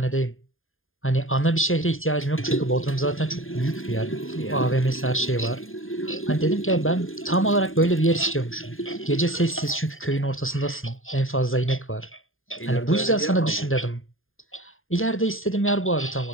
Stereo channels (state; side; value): late; right; 0.59 ms